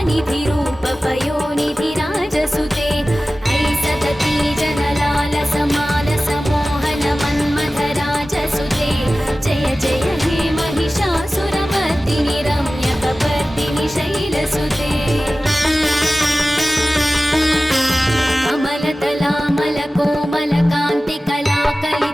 रूपपयोनिधिराजसुते ऐसदती जनलाल समाल समोहन मन्मथराजसुते जय जय हे महिषासुरमर्दिनि रम्यकपर्दिनि शैलसुते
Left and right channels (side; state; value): both; normal; correlation 0.96